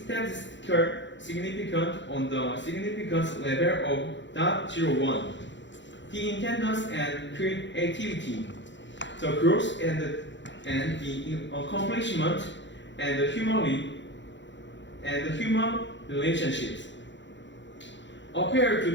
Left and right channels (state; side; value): late; right; 0.53 ms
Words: significant on the significance level of 0.01. The intendance and creativity, the growth and the accomplishment, and the human relationships appear to